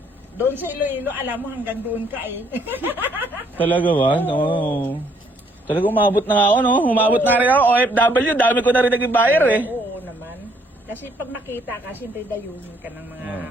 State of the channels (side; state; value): both; normal; correlation 0.66